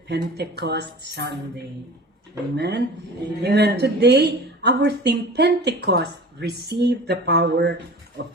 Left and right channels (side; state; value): both; normal; correlation 0.39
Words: Pentecost Sunday. Amen? Amen. Today, our theme, Pentecost, receive the power of